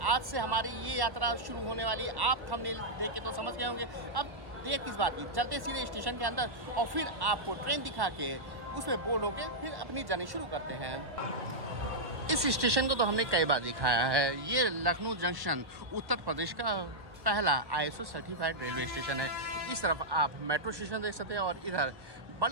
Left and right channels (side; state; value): left; late; 1.1 ms